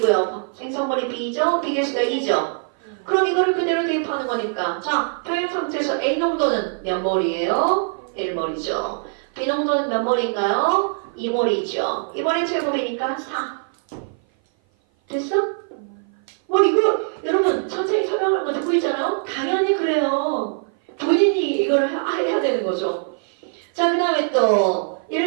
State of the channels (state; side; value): silent; left; 56 dB below the other